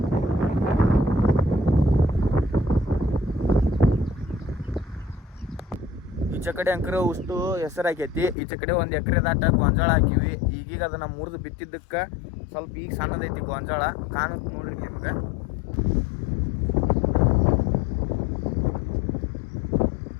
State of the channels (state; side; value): drops out; right; at 8.3 s